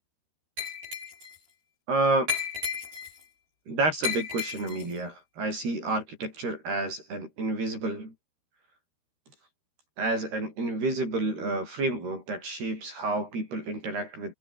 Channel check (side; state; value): left; late; 13 ms